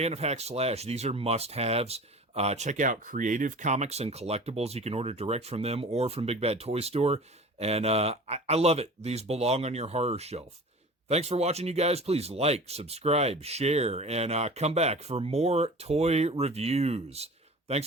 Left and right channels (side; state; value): both; normal; correlation 0.39